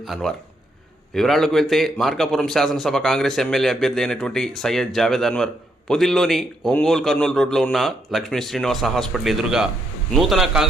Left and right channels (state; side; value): normal; both; correlation 0.76